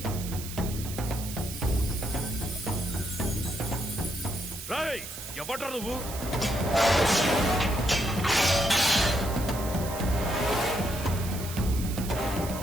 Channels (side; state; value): right; noise; hiss, 10 dB below the sound